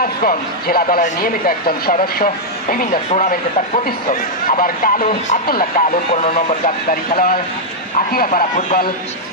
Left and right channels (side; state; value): both; normal; correlation -0.04